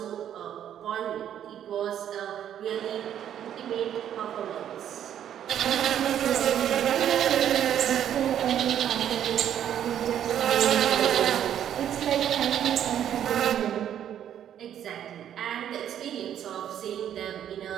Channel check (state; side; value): quieter; left; 10.1 dB